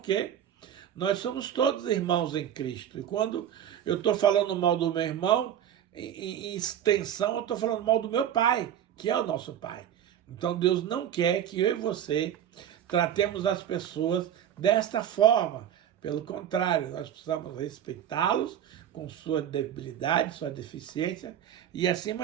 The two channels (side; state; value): left; quieter; 10.1 dB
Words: quê? Nós somos todos irmãos em Cristo. E quando eu estou falando mal do meu irmão, em extensão, eu estou falando mal do meu Pai, que é o nosso Pai. Então Deus não quer que eu e você tratemos as pessoas desta forma. Pelo contrário, nós precisamos respeitá-los com sua debilidade, sua deficiência e,